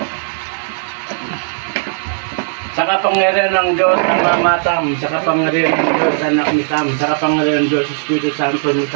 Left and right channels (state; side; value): silent; left; digital silence